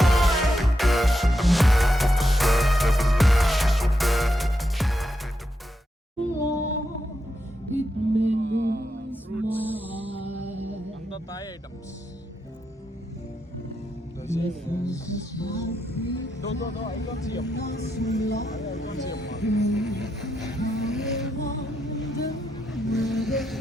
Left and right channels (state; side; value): normal; both; correlation 0.84